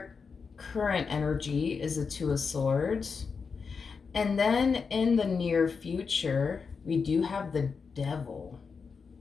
current energy is the Two of Swords. And then in the near future, we do have the Devil.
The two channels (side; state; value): right; quieter; 5.3 dB